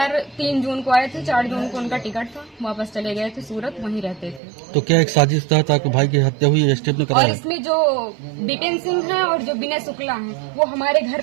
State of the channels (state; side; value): drops out; left; at 4.4 s